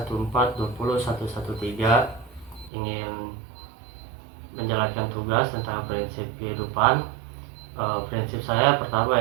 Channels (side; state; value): left; drops out; at 2.7 s